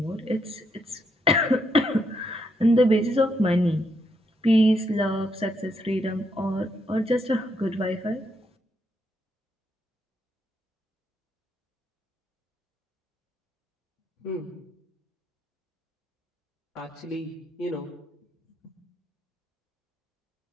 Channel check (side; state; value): both; normal; correlation 0.77